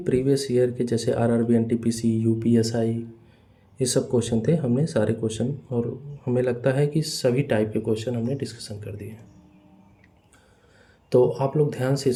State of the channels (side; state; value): both; identical; correlation 1.00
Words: प्रीवियस ईयर के जैसे RRB NTPC UPSI ये सब क्वेश्चन थे, हमने सारे क्वेश्चन और हमें लगता है कि सभी टाइप के क्वेश्चन हमने डिस्कशन कर दिए हैं। तो आप लोग ध्यान से